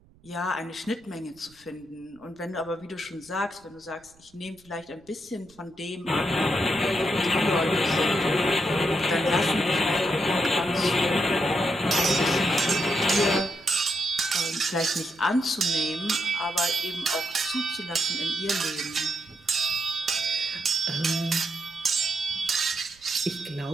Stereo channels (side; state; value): right; noise; rumble, 29 dB below the sound